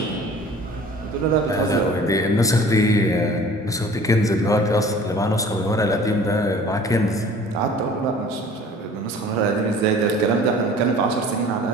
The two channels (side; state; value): both; normal; correlation 0.47